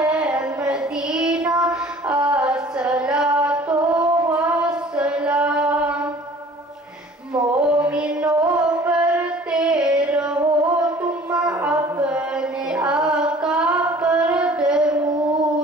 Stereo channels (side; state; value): both; normal; correlation 0.49